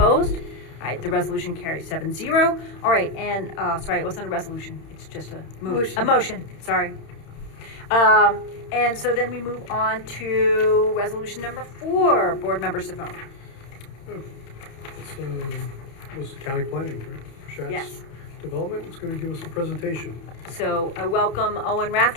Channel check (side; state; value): right; late; 31 ms